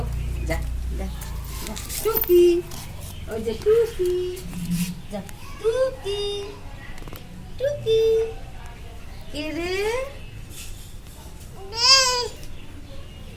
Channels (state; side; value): identical; both; correlation 1.00